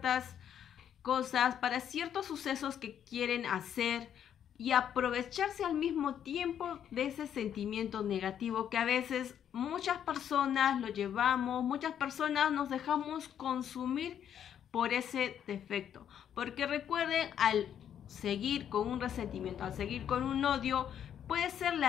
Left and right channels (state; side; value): quieter; right; 9.3 dB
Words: cosas, para ciertos sucesos que quieren hacer, y aprovecharse al mismo tiempo de ese sentimiento negativo que a veces muchas personas lo llevamos, muchas personas nos dejamos consumir por ese defecto. Porque recuerden, al seguir con un resentimiento, al seguir con un odio, puede ser